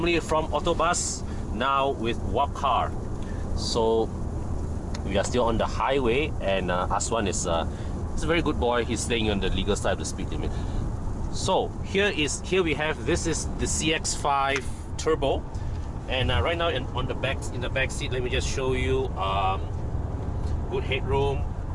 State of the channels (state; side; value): identical; both; correlation 1.00